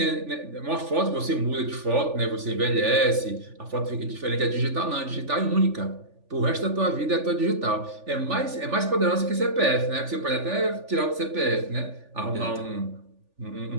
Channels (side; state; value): left; late; 3.4 ms